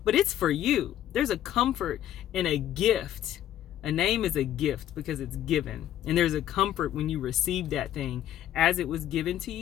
but it's for you. There's a comfort and a gift. A name is a gift because it's given. And there's a comfort when you receive that thing as it was given to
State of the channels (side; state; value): right; quieter; 11.7 dB